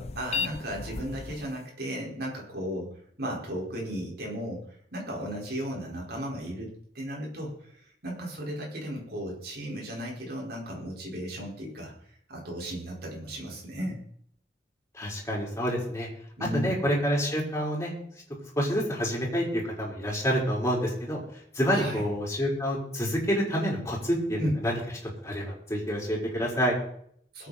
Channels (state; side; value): normal; both; correlation 0.59